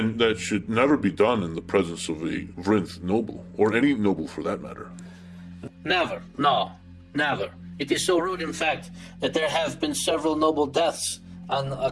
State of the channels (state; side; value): identical; both; correlation 1.00